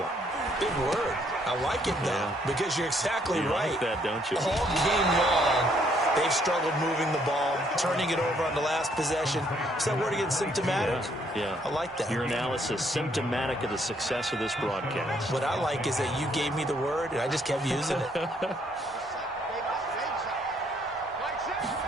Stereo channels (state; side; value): normal; both; correlation 0.68